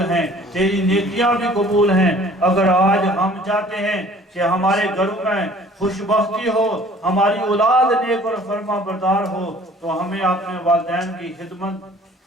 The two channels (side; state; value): both; normal; correlation 0.52